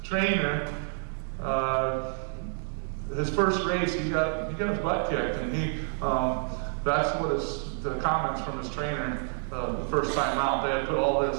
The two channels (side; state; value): left; silent; 59 dB below the other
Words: trainer, his first race, he got his butt kicked, and that's what the comments from his trainer the first time out. They had put all